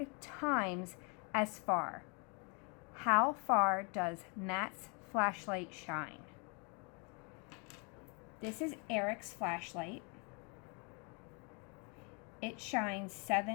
times as far. How far does Matt's flashlight shine? This is Eric's flashlight. It shines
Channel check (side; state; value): right; quieter; 32.7 dB